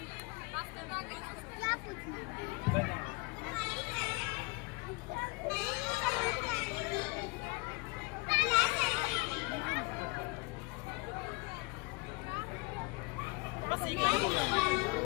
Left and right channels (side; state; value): right; quieter; 26.6 dB